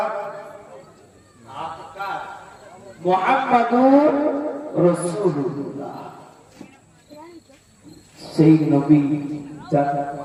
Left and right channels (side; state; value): both; identical; correlation 1.00